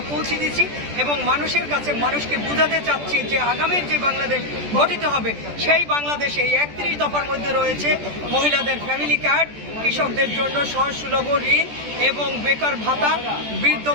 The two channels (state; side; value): late; left; 14 ms